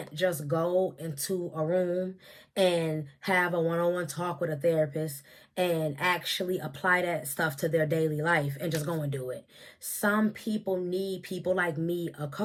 just go into a room and have a one-on-one talk with a therapist and actually apply that stuff to their daily life and just go and do it. Some people need people like me, a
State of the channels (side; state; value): both; identical; correlation 1.00